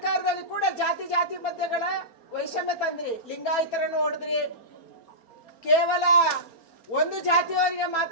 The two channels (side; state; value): right; late; 4.3 ms